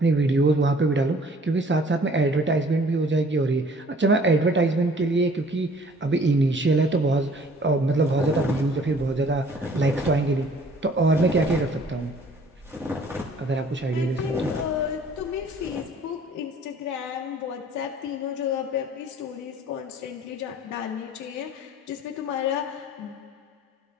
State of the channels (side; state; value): both; normal; correlation 0.54